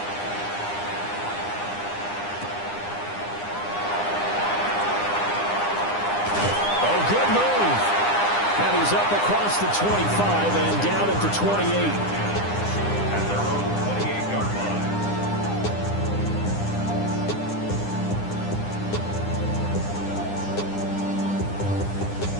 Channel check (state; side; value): late; right; 9.9 ms